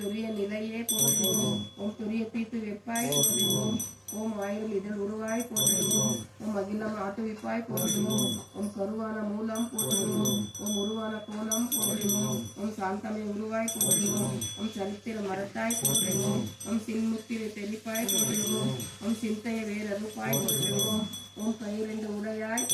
தவிப்பாய் போற்றுவோம். ஓம் ஆயிரம் இதழ் உருவாய் போற்றுவோம். ஓம் அகிலம் ஆட்டுவிப்பாய் போற்றுவோம். ஓம் கருவான மூலம் போற்றுவோம். ஓம் உருவான கோலம் போற்றுவோம். ஓம் சாந்தமை உருவாய் போற்றுவோம். ஓம் சரித்திர மரத்தாய் போற்றுவோம். ஓம் சின்முத்திரை தெளிப்பாய் போற்றுவோம். ஓம் சிந்தைய வேறறுப்பாய் போற்றுவோம். ஓம் கையிரண்டு உடையாய்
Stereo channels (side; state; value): both; identical; correlation 1.00